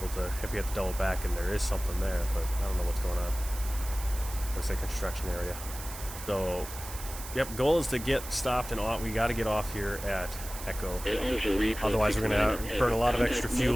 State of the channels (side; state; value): right; noise; hiss, 11 dB below the sound